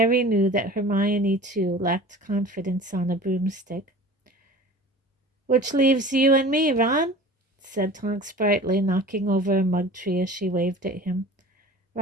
knew that Hermione, too, lacked confidence on a broomstick. "Which leaves you and me, Ron," said Tonks brightly, knocking over a mug tree as she waved at him.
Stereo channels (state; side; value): normal; both; correlation 0.40